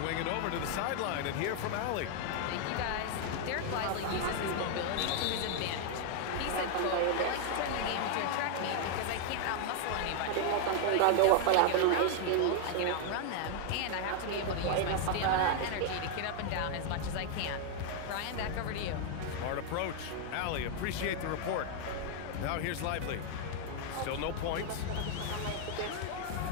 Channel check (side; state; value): both; different; correlation 0.00